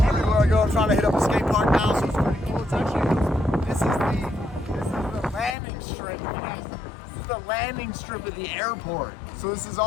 Everywhere I go, I'm trying to hit up a skate park now, so it's pretty cool. It's actually, this is the landing strip. This is the landing strip of the airport. So this is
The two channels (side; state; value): right; drops out; at 5.6 s